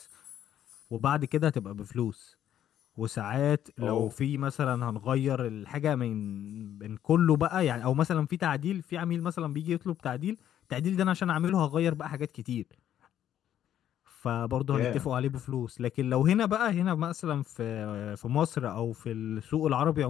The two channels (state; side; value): quieter; right; 10.8 dB